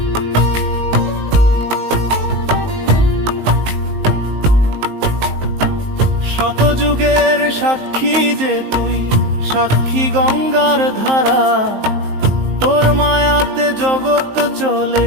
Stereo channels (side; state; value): left; late; 19 ms